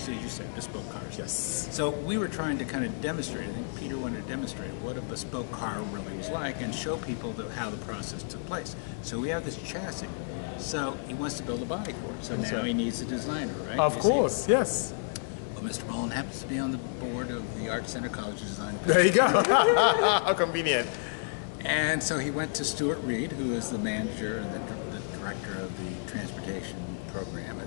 you said, bespoke cars. Yes. So we were trying to kind of demonstrate, I think Peter wanted to demonstrate what a bespoke car really was like and show people how the process took place. So we have this chassis. So he wants to build a body for it. So now he needs a designer, right? Of course, yes. Well, Mr. Mullin happens to be on the board of the Art Center College of Design. There you go. How convenient. And so he went to Stuart Reed, who is the manager and the director of the transportation program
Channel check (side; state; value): right; silent; digital silence